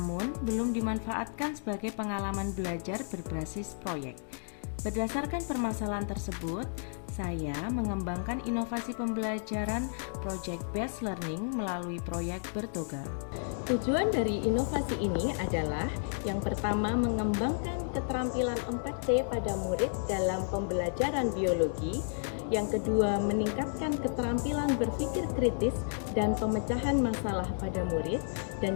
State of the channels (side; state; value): right; silent; digital silence